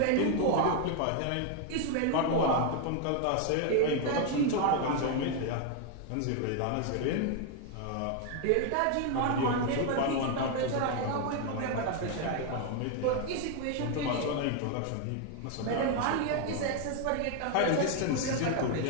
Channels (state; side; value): different; both; correlation 0.01